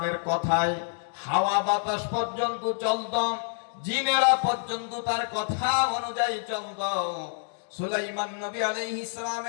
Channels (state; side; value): silent; right; digital silence